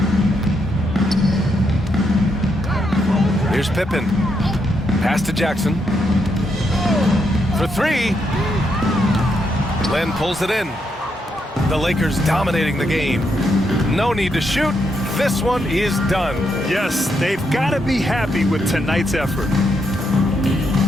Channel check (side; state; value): both; normal; correlation 0.79